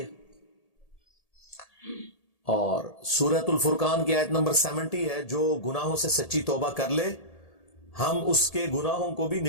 ہے۔ اور سورۃ الفرقان کی آیت نمبر 70 ہے، جو گناہوں سے سچی توبہ کر لے ہم اس کے گناہوں کو بھی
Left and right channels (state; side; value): late; right; 1.8 ms